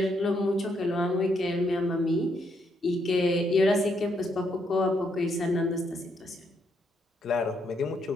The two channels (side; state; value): both; normal; correlation 0.75